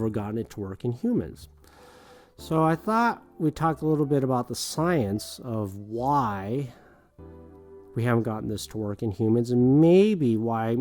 gotten it to work in humans. So I thought we'd talk a little bit about the science of why we haven't gotten this to work in humans, and maybe why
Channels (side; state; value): both; identical; correlation 1.00